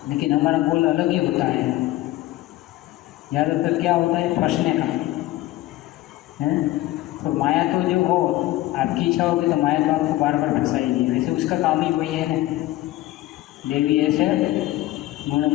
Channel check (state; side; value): quieter; right; 16.5 dB